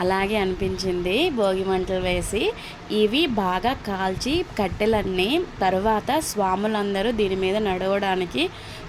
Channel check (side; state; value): both; identical; correlation 1.00